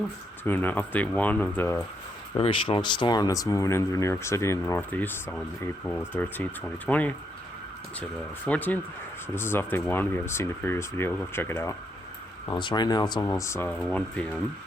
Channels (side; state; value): both; normal; correlation 0.77